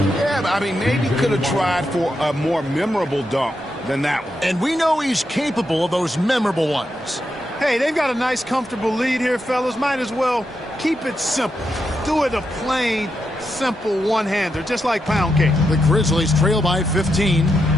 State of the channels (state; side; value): normal; both; correlation 0.85